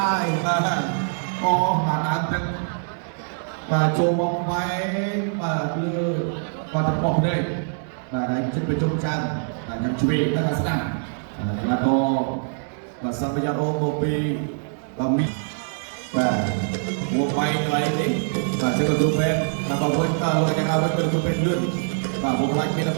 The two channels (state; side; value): silent; left; digital silence